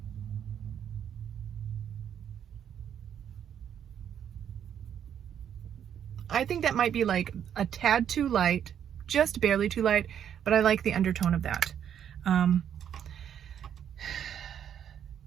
I think that might be like a tad too light, just barely too light, but I like the undertone of that.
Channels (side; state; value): left; quieter; 9.1 dB